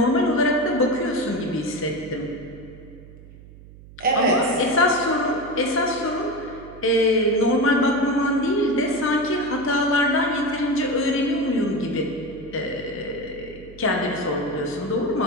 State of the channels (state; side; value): noise; right; hum, 20 dB below the sound